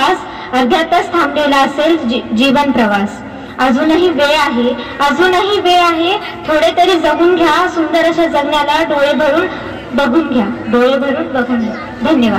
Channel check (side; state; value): both; identical; correlation 1.00